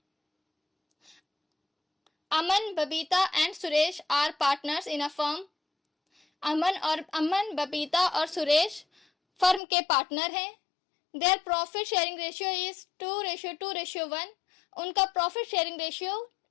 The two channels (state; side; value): drops out; right; at 9.6 s